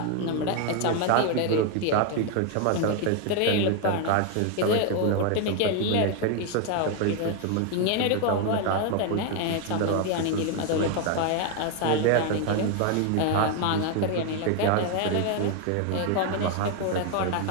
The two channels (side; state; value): both; different; correlation 0.01